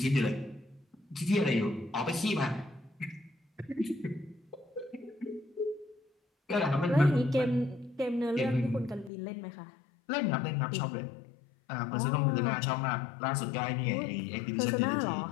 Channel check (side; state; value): right; drops out; at 9.1 s